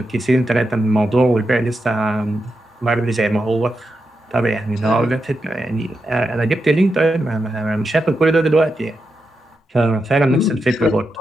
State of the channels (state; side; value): normal; both; correlation 0.87